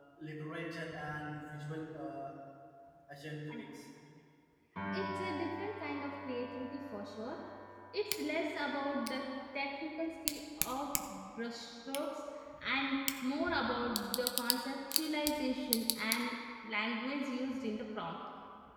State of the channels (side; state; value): both; identical; correlation 1.00